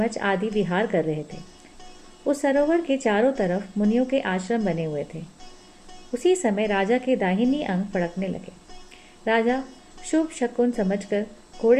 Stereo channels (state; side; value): identical; both; correlation 1.00